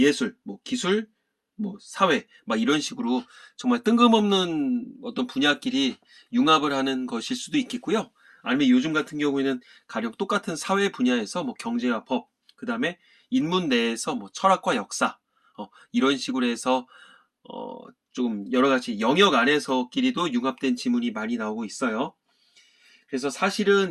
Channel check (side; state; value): both; identical; correlation 1.00